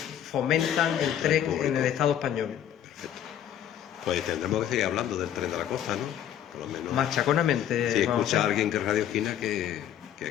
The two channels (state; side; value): quieter; right; 10.4 dB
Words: el tren en el Estado español. Perfecto. Pues tendremos que seguir hablando del tren de la costa, ¿no? Por lo menos. Machaconamente. Si vamos escucha a a hacer. alguien que es Radio Esquina, que